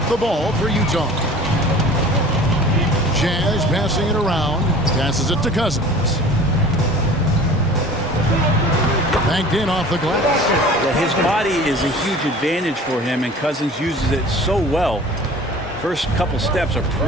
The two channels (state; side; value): normal; both; correlation 0.43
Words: the ball for Utah. Jazz passing it around. Passes it to Cousins. Banked in off the glass. Yeah, his body is a huge advantage for him, and Cousins uses it so well. First couple steps are